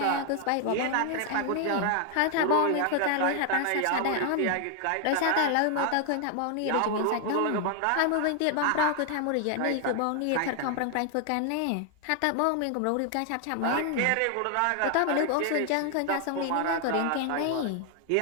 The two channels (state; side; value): different; both; correlation 0.00